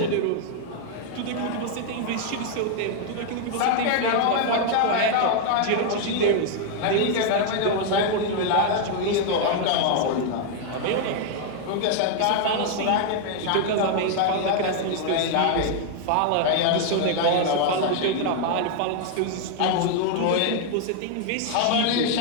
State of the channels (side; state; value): both; different; correlation 0.00